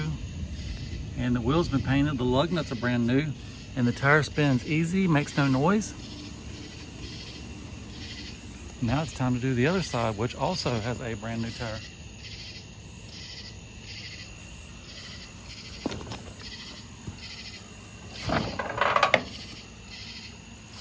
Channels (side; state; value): both; identical; correlation 1.00